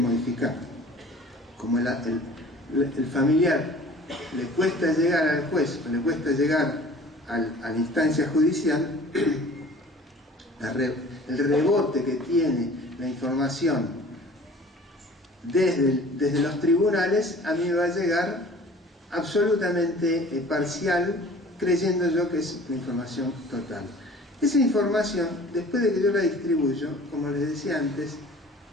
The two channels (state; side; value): normal; both; correlation 0.47